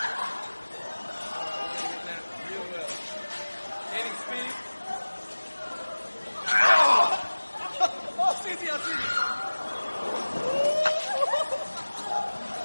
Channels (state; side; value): inverted; both; correlation -1.00